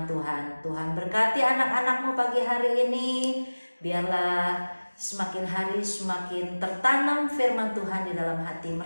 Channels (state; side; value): inverted; both; correlation -1.00